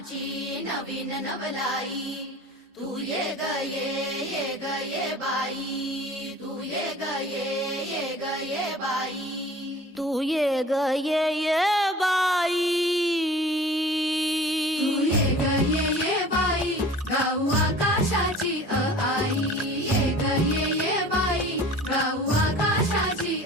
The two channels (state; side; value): normal; both; correlation 0.43